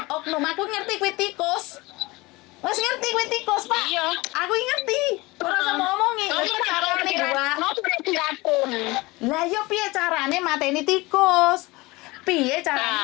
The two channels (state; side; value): quieter; right; 22.4 dB